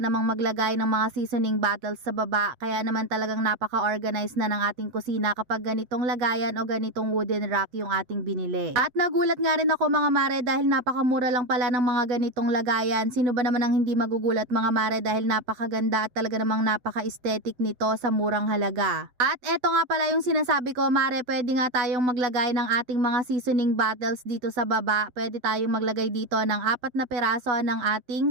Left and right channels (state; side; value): late; left; 8.0 ms